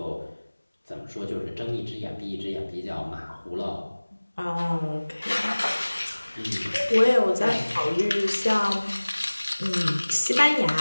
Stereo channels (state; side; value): inverted; both; correlation -1.00